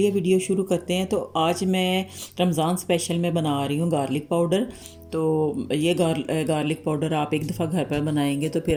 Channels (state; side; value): identical; both; correlation 1.00